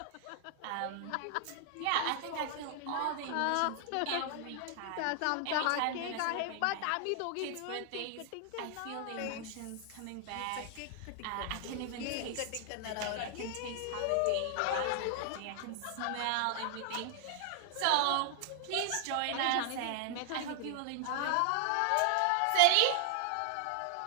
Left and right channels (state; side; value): different; both; correlation 0.00